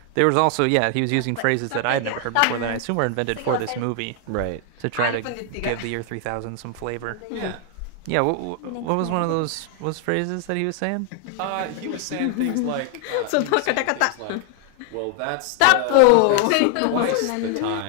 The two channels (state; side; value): different; both; correlation 0.00